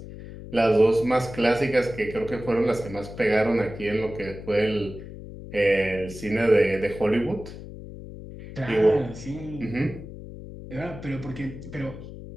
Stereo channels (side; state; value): left; noise; hum, 13 dB below the sound